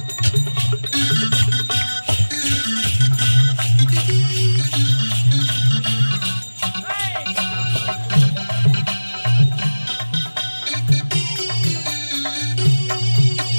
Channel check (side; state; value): both; inverted; correlation -1.00